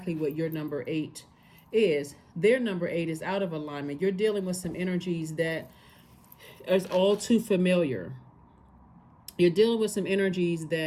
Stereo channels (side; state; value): both; identical; correlation 1.00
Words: what your number 8 is. Their number 8 is out of alignment. You're dealing with some energies that is all too familiar. You're dealing with some energies